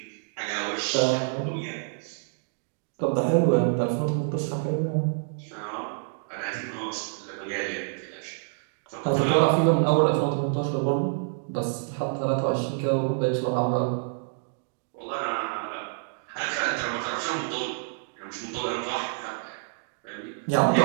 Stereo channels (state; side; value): silent; left; digital silence